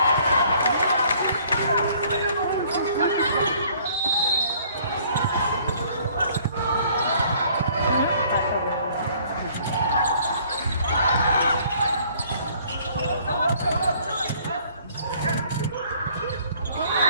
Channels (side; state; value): both; inverted; correlation -0.58